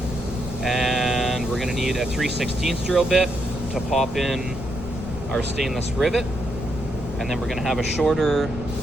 and we're going to need a 3/16 drill bit to pop in our stainless rivet, and then we're going to have a shorter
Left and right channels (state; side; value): noise; left; rumble, 9 dB below the sound